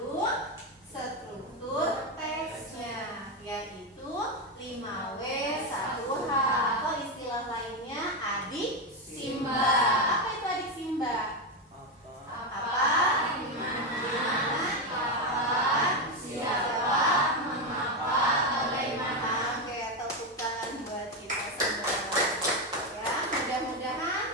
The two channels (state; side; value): normal; both; correlation 0.10